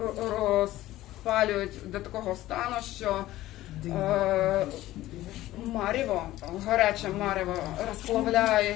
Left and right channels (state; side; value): quieter; right; 15.6 dB